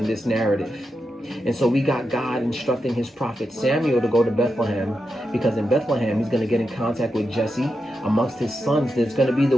this narrative. And so we got God instructing his prophet Samuel to go to Bethlehem, because in Bethlehem he's going to get in contact with Jesse. Amongst his sons, there's going to be the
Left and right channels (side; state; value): both; normal; correlation 0.87